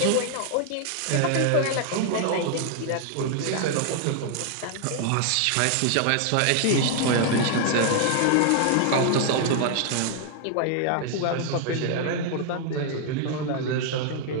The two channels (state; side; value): different; both; correlation 0.00